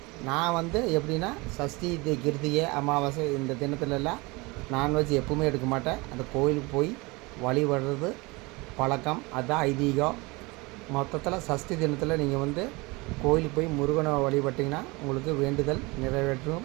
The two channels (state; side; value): quieter; left; 24.9 dB